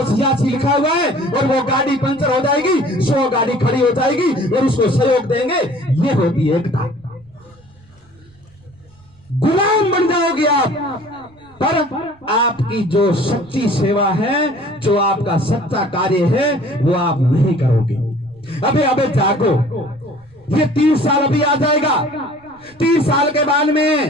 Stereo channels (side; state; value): right; noise; rumble, 29 dB below the sound